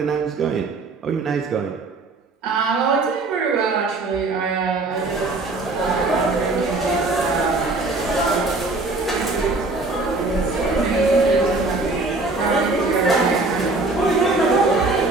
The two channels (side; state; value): left; quieter; 3.3 dB